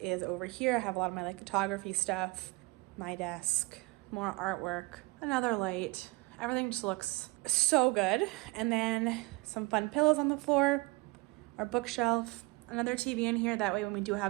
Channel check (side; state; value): left; quieter; 25.7 dB